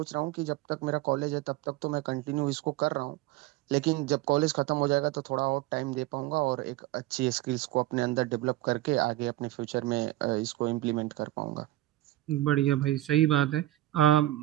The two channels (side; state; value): left; quieter; 16.3 dB